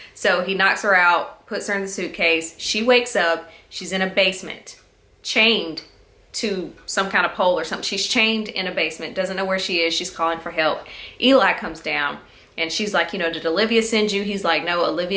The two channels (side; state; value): both; identical; correlation 1.00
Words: So he knocks her out, puts her in the suitcase. She wakes up. She's in a basement, chained to some kind of pole or something. She's chained in a basement, doesn't know where she is. She's calling for help. Eli comes down. And she's like, did Olivia send you? He's like, no,